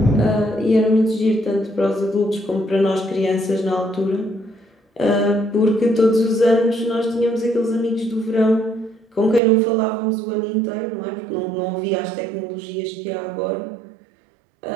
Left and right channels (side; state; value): left; drops out; at 9.4 s